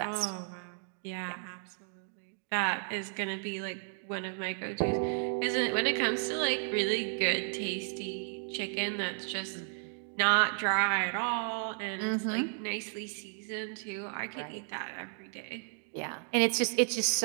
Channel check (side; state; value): left; silent; 56 dB below the other